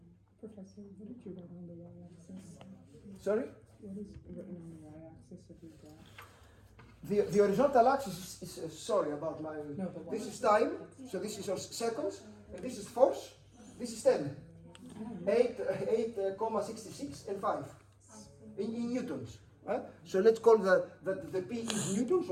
Professor, what did you write on the y-axis? Sorry? What is written on the y-axis of your graph? The horizontal axis is sorry about my. No, but This is time, so this is your seconds, and this is force. This is 10. 8,66 and 5 in newtons. So let's call that the P is newtons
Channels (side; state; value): both; identical; correlation 1.00